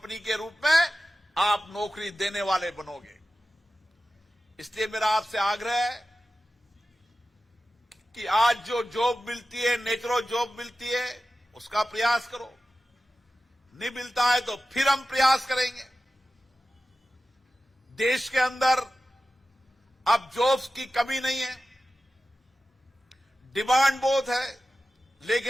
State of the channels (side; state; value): both; normal; correlation 0.94